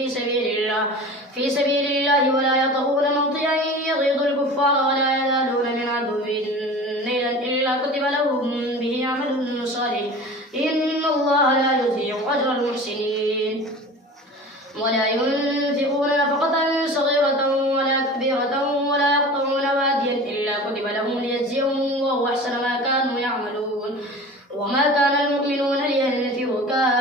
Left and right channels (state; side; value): normal; both; correlation 0.37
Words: سبيل الله ولا يطؤون موطئا يغيظ الكفار ولا يزالون من عدو نيلا إلا كتب لهم به عمل صالح إن الله لا يضيع أجر المحسنين ولا ينفقون نفقة صغيرة ولا كبيرة ولا يقطعون واديا إلا كتب لهم ليجزيهم الله أحسن ما كانوا يعملون وما كان المؤمنون لينفروا